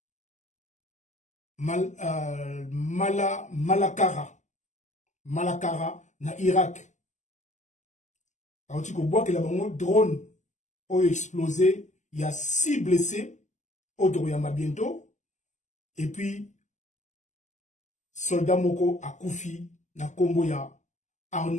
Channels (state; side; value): late; right; 0.34 ms